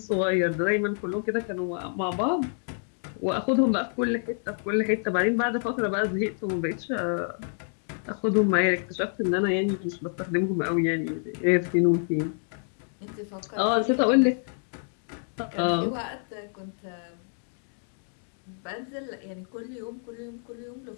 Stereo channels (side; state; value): right; silent; 60 dB below the other